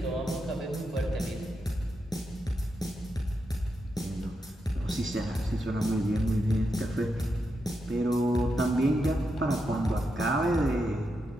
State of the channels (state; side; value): normal; both; correlation 0.85